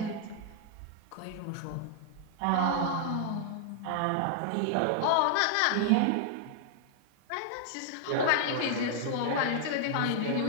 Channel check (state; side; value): different; both; correlation 0.00